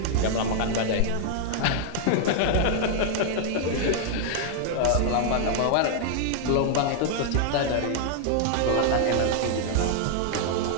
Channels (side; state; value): both; different; correlation 0.00